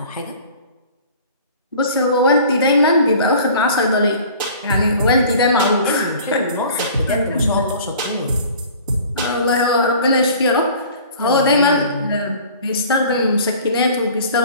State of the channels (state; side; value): inverted; both; correlation -0.46